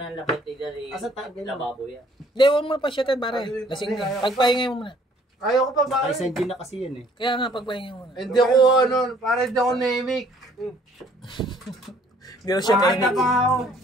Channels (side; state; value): both; normal; correlation 0.60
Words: lapit ni lababo yan. Hindi, huwag mo pa siya tayo, pare. Lasing na. Pagpahingay mo muna. Ayaw ko pa ba? Ay, send na kasi yun eh. Kaya nga, pagpahingay mo muna. Hindi ako, para hindi ako naimik. Hindi na siya Ay, nainig.